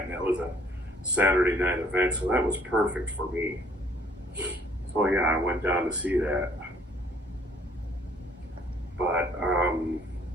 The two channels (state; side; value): normal; both; correlation 0.61